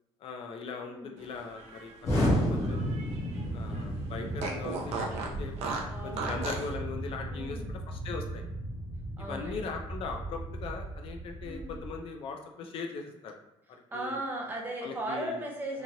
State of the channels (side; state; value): both; normal; correlation 0.60